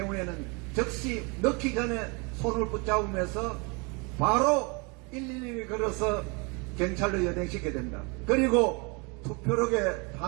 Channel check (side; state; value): left; quieter; 30.6 dB